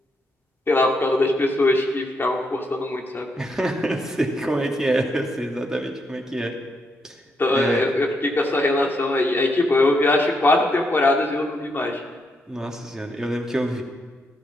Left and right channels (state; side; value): normal; both; correlation 0.79